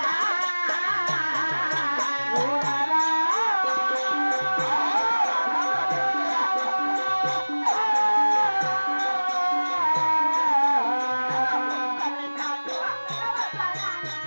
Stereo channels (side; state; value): both; inverted; correlation -1.00